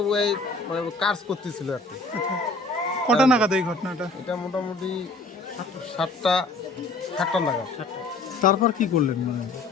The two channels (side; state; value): right; quieter; 3.2 dB